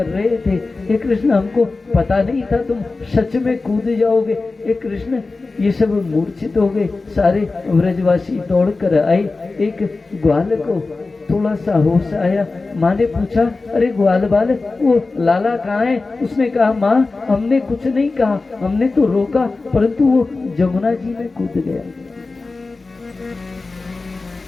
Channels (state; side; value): quieter; right; 3.7 dB